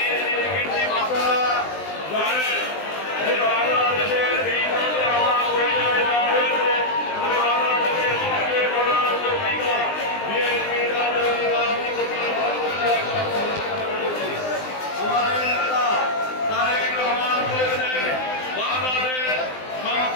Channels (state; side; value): late; right; 20 ms